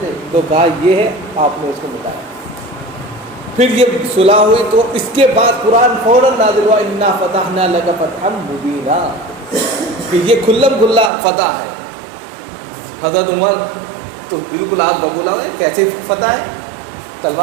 تو کہا یہ ہے, آپ نے اس کو بتایا. پھر یہ صلح ہوئی تو اس کے بعد قرآن فوراً نازل ہوا انا فتحنا لک فتحا مبینا, کہ یہ کھلم کھلا فتح ہے. حضرت عمر تو بالکل آپ ببولا ہے, کیسے فتح ہے,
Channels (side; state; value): left; drops out; at 11.1 s